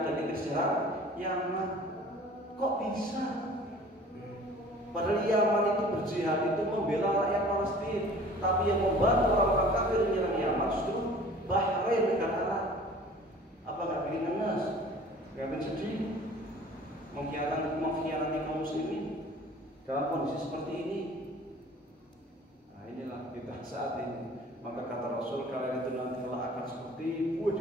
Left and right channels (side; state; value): both; normal; correlation 0.47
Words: dan Inggris serang Yaman. Kok bisa? Padahal Yaman itu berjihad itu membela rakyat Palestina, tapi yang membantu orang-orang kafir menyerang Yaman justru Bahrain, negara Arab. Apa nggak bikin ngenes? Nggak bikin sedih? Mengkhianati kaum muslimin dalam kondisi seperti ini. Nah, inilah kita saat ini. Maka kata Rasul, kalian itu nanti akan seperti buah